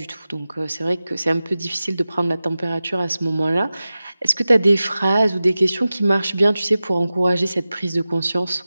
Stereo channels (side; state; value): both; inverted; correlation -0.95